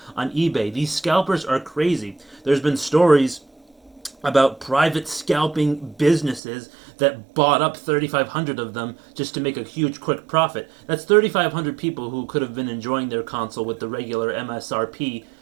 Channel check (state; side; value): drops out; left; at 6.4 s